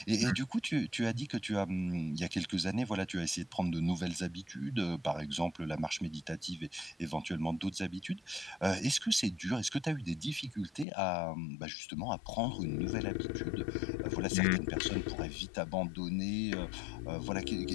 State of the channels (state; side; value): drops out; right; at 10.9 s